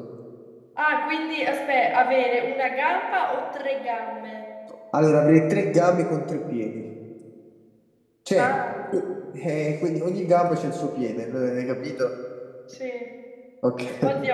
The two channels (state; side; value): identical; both; correlation 1.00